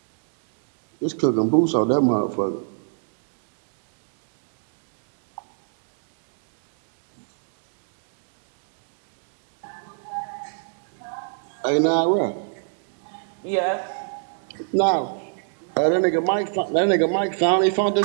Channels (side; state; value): left; silent; digital silence